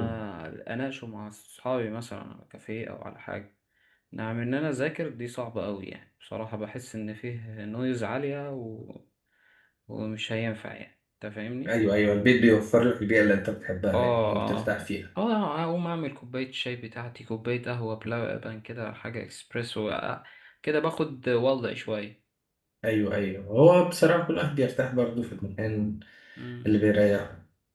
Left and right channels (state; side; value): identical; both; correlation 1.00